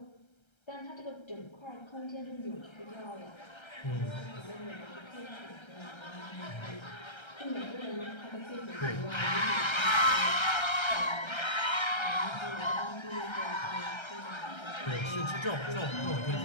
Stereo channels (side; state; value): right; late; 1.3 ms